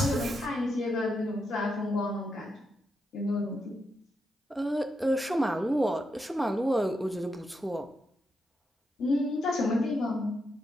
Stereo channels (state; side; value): normal; both; correlation 0.83